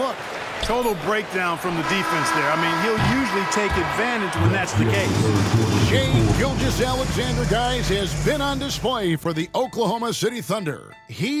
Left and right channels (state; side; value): identical; both; correlation 1.00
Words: Total breakdown from the defense there. I mean, he'll usually take advantage when that's the case. Shai Gilgeous-Alexander, guys, has been on display for the Oklahoma City Thunder.